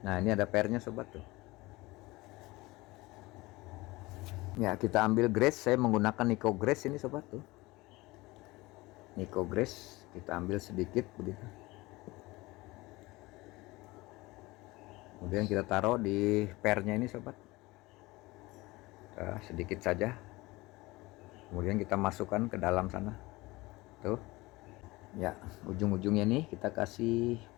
Nah, ini ada pernya sobat tuh. Ya, kita ambil grease. Saya menggunakan Nico Grease ini sobat tuh. Nico Grease kita ambil sedikit begitu. Kemudian kita taruh di pernya ini sobat. Sedikit saja. Kemudian kita masukkan ke dalam sana. Tuh. Ya, ujung-ujungnya nih kita kasih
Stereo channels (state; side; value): quieter; right; 21.3 dB